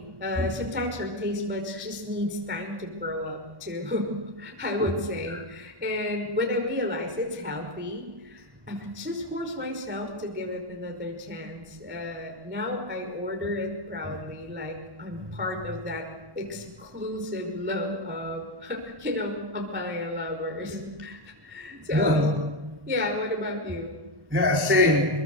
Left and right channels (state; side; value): late; left; 1.1 ms